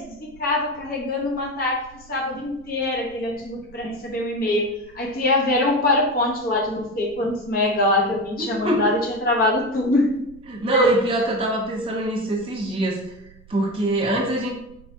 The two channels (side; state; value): right; noise; rumble, 24 dB below the sound